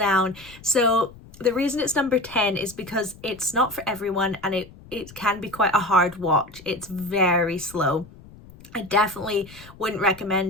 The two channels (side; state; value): left; noise; rumble, 21 dB below the sound